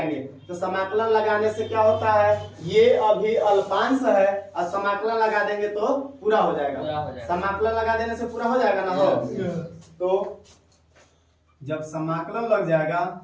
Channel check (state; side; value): identical; both; correlation 1.00